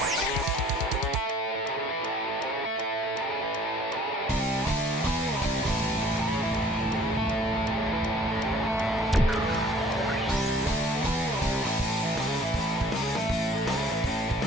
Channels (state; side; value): normal; both; correlation 0.55